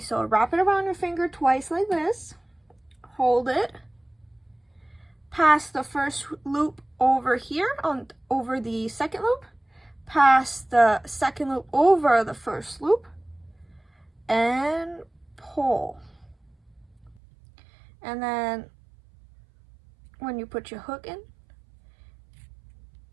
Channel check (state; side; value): drops out; left; at 17.2 s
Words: wrap it around your finger twice like this, hold it, pass the first loop over here over the second loop, pass the second loop over the first loop, and pull. And then when you put your hook in,